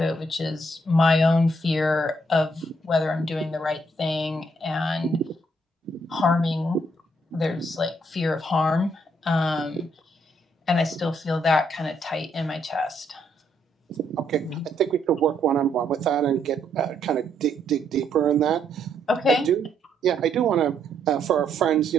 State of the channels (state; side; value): normal; both; correlation 0.73